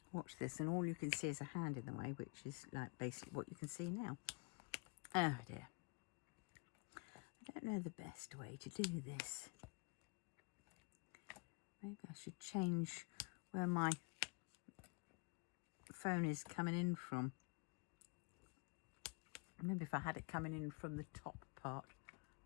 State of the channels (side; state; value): right; quieter; 31.5 dB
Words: watch this and all you can see is a hand in the way, which is like basically what you can see now. Oh dear. I don't know the best way to do this. Maybe I should change where my phone is coming in from. Maybe if I had it coming in from the top part,